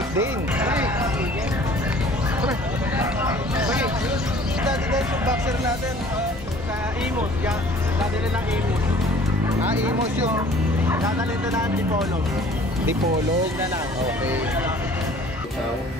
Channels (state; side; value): normal; both; correlation 0.51